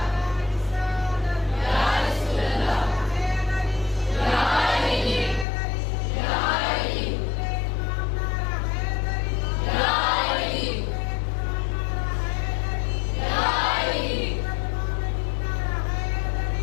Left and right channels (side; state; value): right; drops out; at 5.5 s